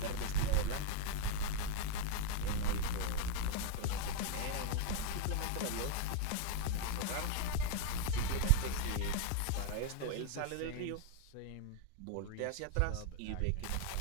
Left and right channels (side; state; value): both; different; correlation 0.01